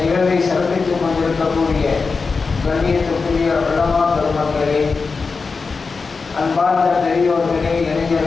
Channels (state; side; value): quieter; right; 4.6 dB